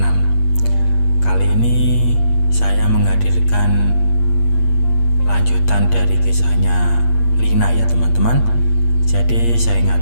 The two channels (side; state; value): right; late; 8.5 ms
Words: Kali ini saya menghadirkan lanjutan dari kisahnya Lina ya teman-teman. Jadi saya